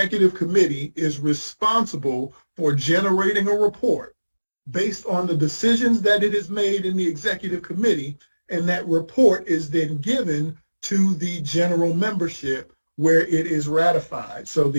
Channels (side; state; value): both; inverted; correlation -1.00